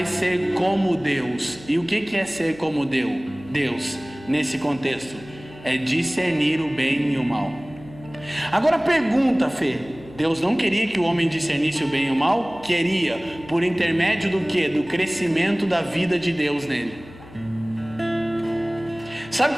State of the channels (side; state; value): left; noise; hum, 19 dB below the sound